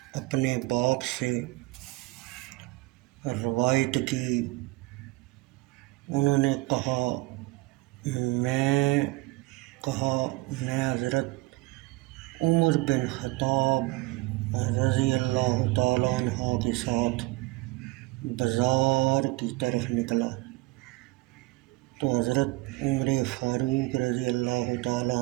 اپنے باپ سے روایت کی، انہوں نے کہا میں حضرت عمر بن خطاب رضی اللہ تعالیٰ عنہ کے ساتھ بازار کی طرف نکلا تو حضرت عمر فاروق رضی اللہ تعالیٰ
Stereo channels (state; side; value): quieter; left; 21.0 dB